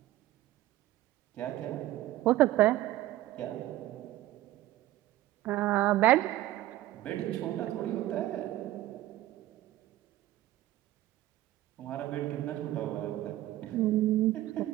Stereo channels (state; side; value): quieter; left; 15.1 dB